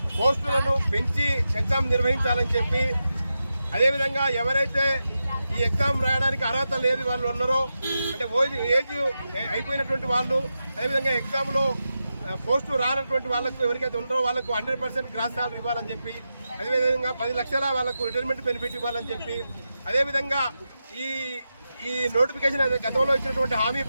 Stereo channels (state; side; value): inverted; both; correlation -0.90